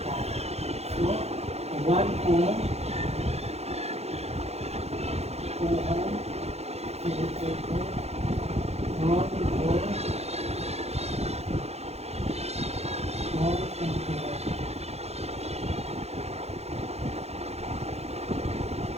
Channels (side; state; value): left; late; 0.31 ms